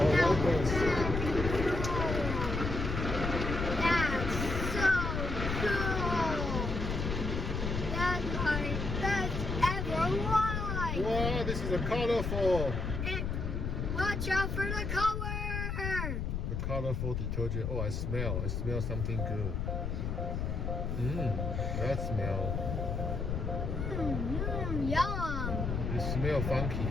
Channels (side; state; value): left; noise; rumble, 2 dB below the sound